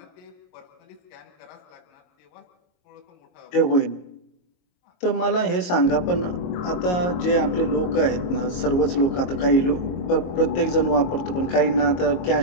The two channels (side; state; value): right; late; 22 ms